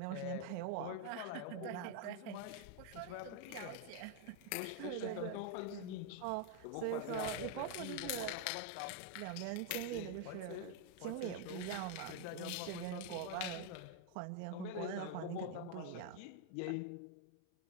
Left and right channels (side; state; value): both; different; correlation 0.00